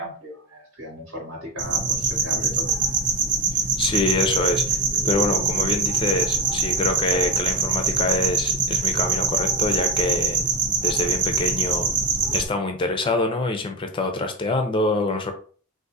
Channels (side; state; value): both; normal; correlation 0.14